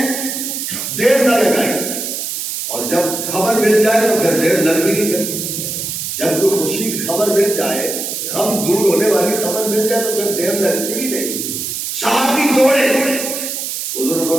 دیر نہ لگائی، اور جب خبر مل جائے تو پھر دیر لگ بھی نہیں سکتی، جب کوئی خوشی کی خبر مل جائے، غم دور ہونے والی خبر مل جائے تو پھر دیر لگتی بھی نہیں۔ صحابی دوڑے، حضور نے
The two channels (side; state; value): right; noise; hiss, 4 dB below the sound